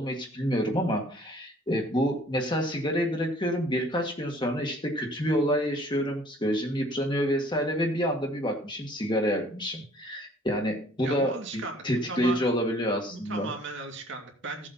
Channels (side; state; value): both; normal; correlation 0.56